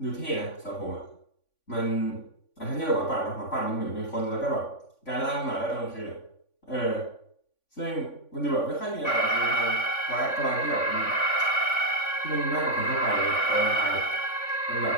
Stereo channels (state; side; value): late; right; 3.5 ms